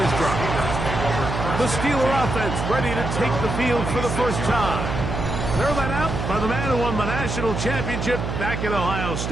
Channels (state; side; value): noise; right; hum, 3 dB below the sound